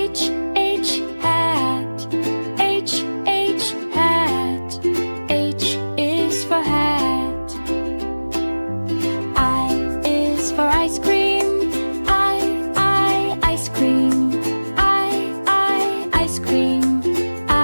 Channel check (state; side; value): inverted; both; correlation -1.00